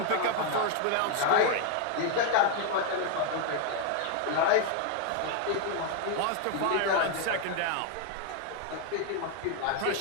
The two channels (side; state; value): both; different; correlation 0.00